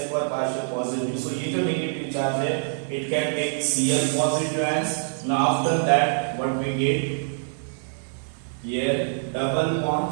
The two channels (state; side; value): silent; left; digital silence